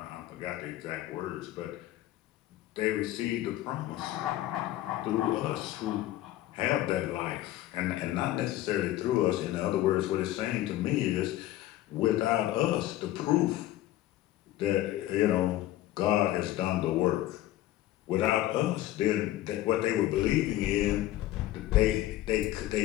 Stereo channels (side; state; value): right; quieter; 14.7 dB